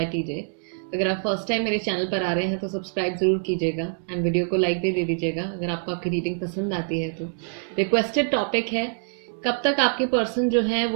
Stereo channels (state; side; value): silent; left; digital silence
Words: TJ. अगर आप first time मेरे channel पर आ रहे हैं तो सब्सक्राइब जरूर कीजिएगा एंड वीडियो को लाइक भी दे दीजिएगा अगर आपको आपकी रीडिंग पसंद आती है तो। रिक्वेस्टेड टॉपिक है, कब तक आपके पर्सन जो है